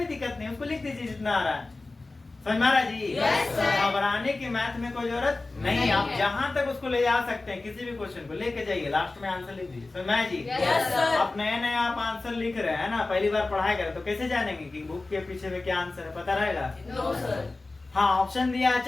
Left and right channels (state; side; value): quieter; right; 3.3 dB